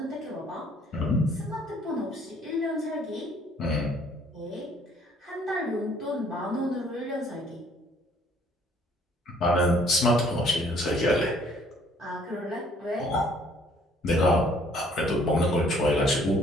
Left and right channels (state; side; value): normal; both; correlation 0.61